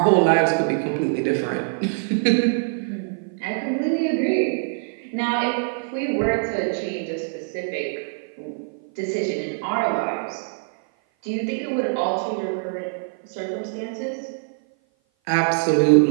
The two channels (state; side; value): silent; left; 56 dB below the other